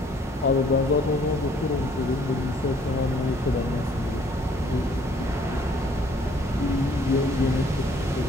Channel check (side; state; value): both; normal; correlation 0.61